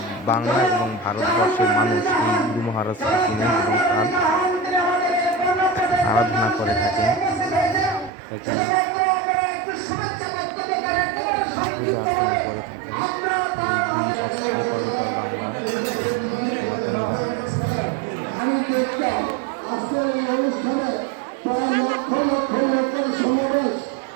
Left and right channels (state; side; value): drops out; left; at 8.1 s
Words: বাংলা এবং ভারতবর্ষের মানুষ এই গুরু মহারাজকে চিনেন এবং তার আরাধনা করে থাকেন, তাকে পূজা অর্চনা করে থাকেন এই দুই এপার ওপার বাংলার সনাতনীরা।